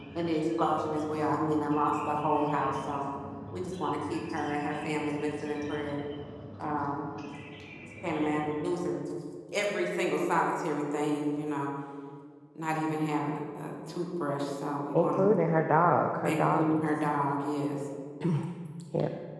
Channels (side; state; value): both; identical; correlation 1.00